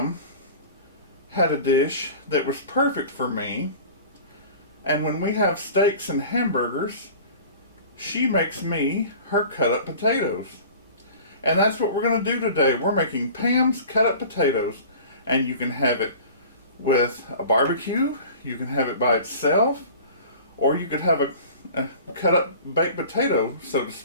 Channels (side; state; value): both; inverted; correlation -0.42